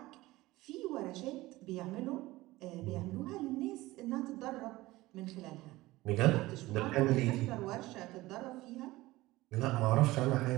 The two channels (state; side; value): quieter; left; 18.7 dB